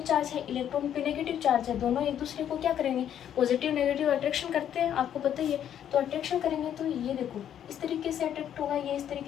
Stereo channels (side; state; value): right; quieter; 9.9 dB